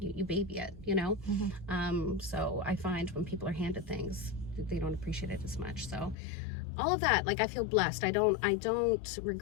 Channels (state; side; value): drops out; right; at 6.2 s